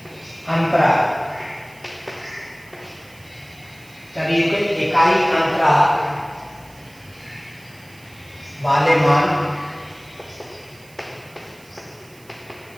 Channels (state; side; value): noise; right; hiss, 25 dB below the sound